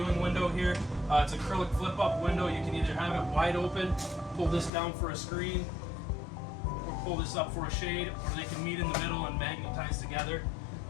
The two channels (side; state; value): right; drops out; at 4.7 s